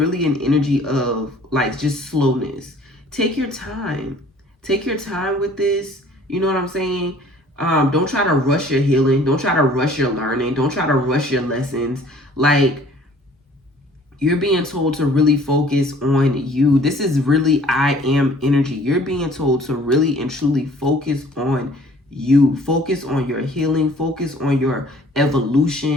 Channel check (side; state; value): both; normal; correlation 0.53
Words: an energy of like just slowness. Take your time. Take your time with this. You know what I'm saying? Don't try to rush your healing. Don't try to rush your learning. Don't try to rush your lessons. Like, you're being told to really focus on you. This is really I am energy. You're being told to really and truly focus on you. Focus on your healing. Focus on your